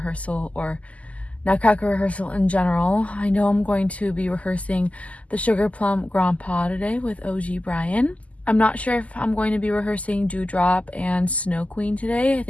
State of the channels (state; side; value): late; right; 0.069 ms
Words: or Nutcracker rehearsal in general. I know I'm going to be rehearsing the sugarplum Grand Pas today with OG Brian. I'm not sure if I'm going to be rehearsing Dewdrop and Snow Queen today. I